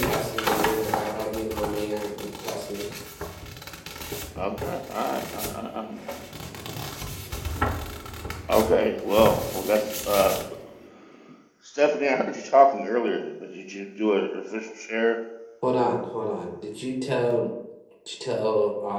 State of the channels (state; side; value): identical; both; correlation 1.00